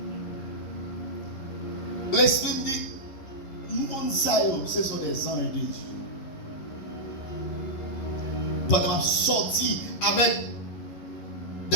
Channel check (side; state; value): right; late; 11 ms